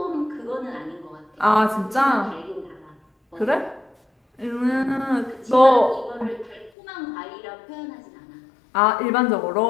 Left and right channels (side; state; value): right; drops out; at 6.7 s